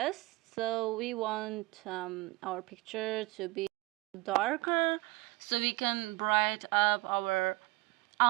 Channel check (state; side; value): quieter; left; 21.8 dB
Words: So we want our picture to be darker so we can bright up our